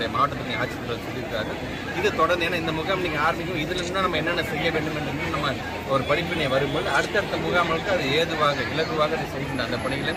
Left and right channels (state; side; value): identical; both; correlation 1.00